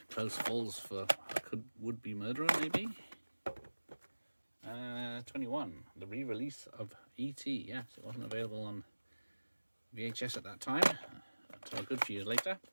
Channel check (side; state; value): both; inverted; correlation -1.00